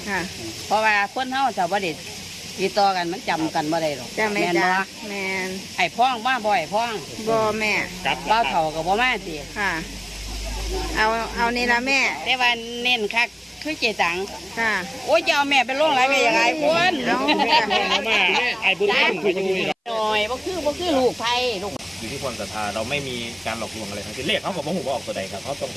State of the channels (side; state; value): both; identical; correlation 1.00